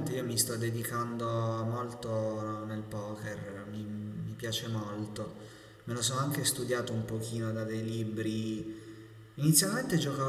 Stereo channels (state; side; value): identical; both; correlation 1.00